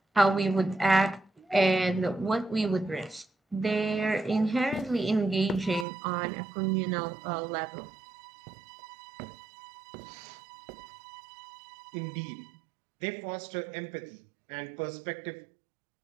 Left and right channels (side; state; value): left; drops out; at 5.9 s